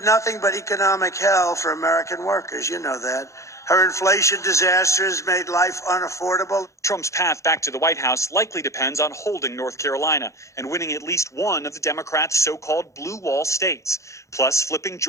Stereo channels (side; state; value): right; late; 0.15 ms